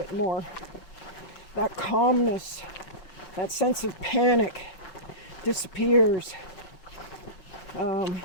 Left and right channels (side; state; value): right; late; 5.9 ms